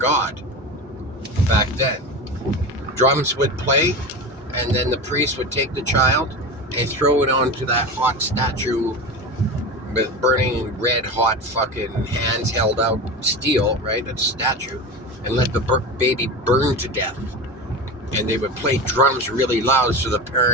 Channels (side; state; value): both; normal; correlation 0.26